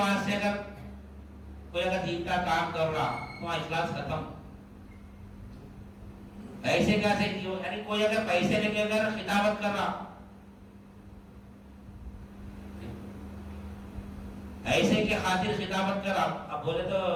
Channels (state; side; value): identical; both; correlation 1.00